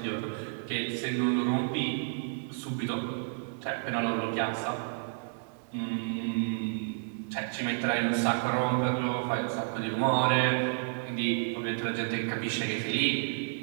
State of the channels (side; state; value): left; silent; digital silence